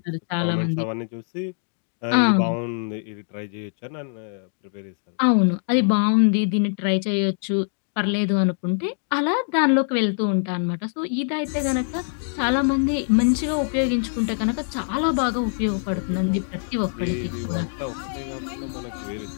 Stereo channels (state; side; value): silent; right; digital silence